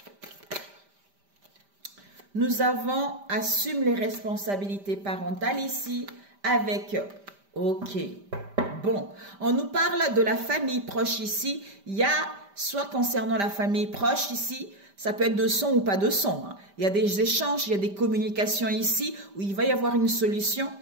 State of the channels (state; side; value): late; left; 5.1 ms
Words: Nous avons assume les responsabilités parentales ici avec OK, Bon, on nous parle de la famille proche ici. Il y a, soit concernant la famille proche ici, ça peut être de sang ou pas de sang. Hein. Il y a des échanges, il y a des communications ici, où il va y avoir une solution,